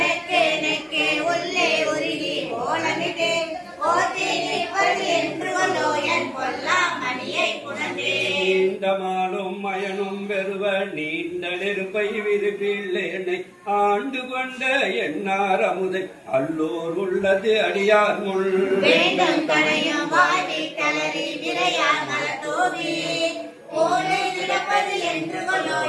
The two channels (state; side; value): identical; both; correlation 1.00